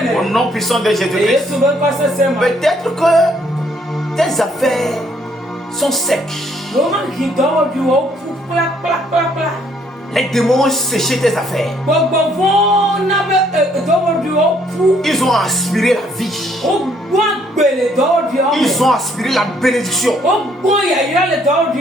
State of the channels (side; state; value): both; normal; correlation 0.67